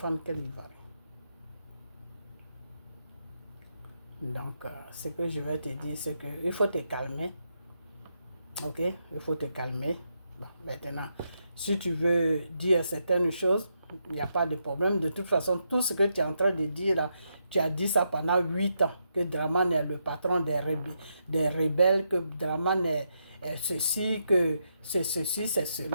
quel Ivoirien? Donc, ce que je vais te dire, c'est qu'il faut te calmer. Ok, il faut te calmer. Bon, maintenant, si tu veux dire certaines choses, il n'y a pas de problème. De toute façon, tout ce que tu es en train de dire là, tu as dit ça pendant 8 ans, que Dramane est le patron des rebelles, que Dramane est ceci, que c'est ceci, c'est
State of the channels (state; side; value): inverted; both; correlation -0.81